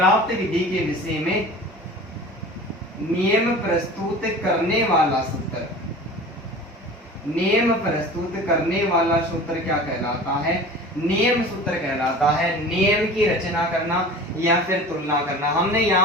विधि के विषय में नियम प्रस्तुत करने वाला सूत्र, नियम प्रस्तुत करने वाला सूत्र क्या कहलाता है, नियम सूत्र कहलाता है। नियम की रचना करना या फिर तुलना करना। हमने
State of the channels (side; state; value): both; normal; correlation 0.39